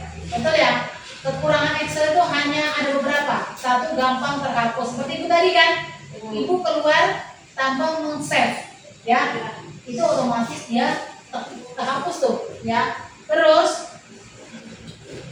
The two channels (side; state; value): both; identical; correlation 1.00